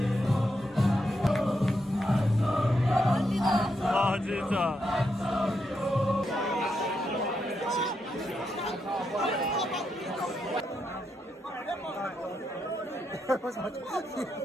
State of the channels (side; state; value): both; normal; correlation 0.82